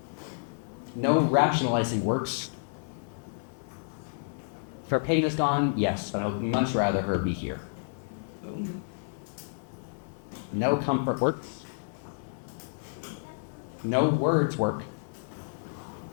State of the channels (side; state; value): right; silent; 58 dB below the other